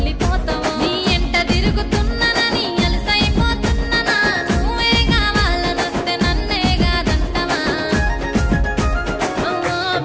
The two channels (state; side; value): identical; both; correlation 1.00